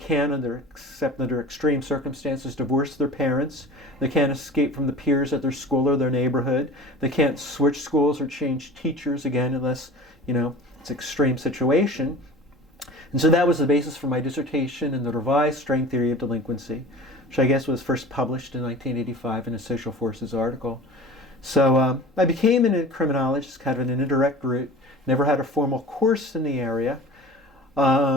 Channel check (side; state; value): both; normal; correlation 0.40